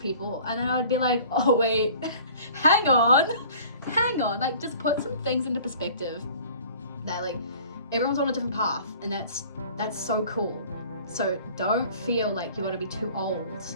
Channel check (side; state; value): both; inverted; correlation -0.47